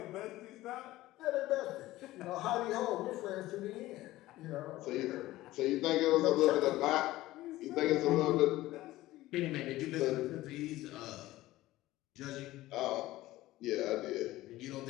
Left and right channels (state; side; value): quieter; right; 16.8 dB